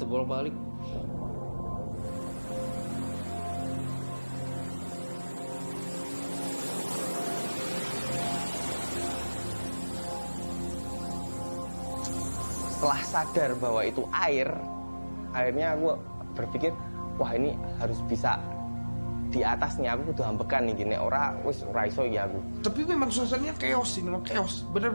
bolak-balik. Setelah sadar bahwa itu air, akhirnya aku berpikir, wah ini harus bisa di atasnya, aku kudu ambekan nih gini, ora iso ya aku. Tapi memang suasananya chaos sih, memang chaos,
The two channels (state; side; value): inverted; both; correlation -1.00